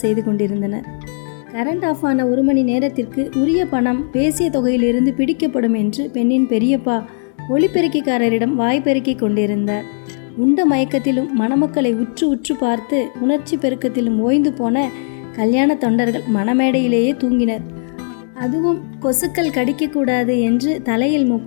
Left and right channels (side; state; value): right; silent; 68 dB below the other